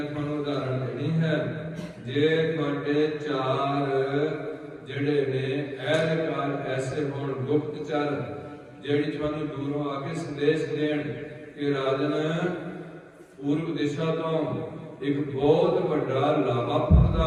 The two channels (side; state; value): both; identical; correlation 1.00